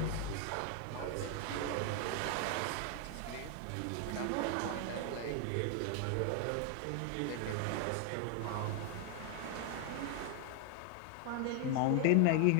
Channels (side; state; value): both; different; correlation 0.00